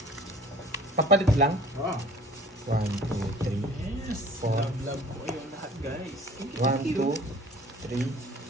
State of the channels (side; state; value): both; normal; correlation 0.48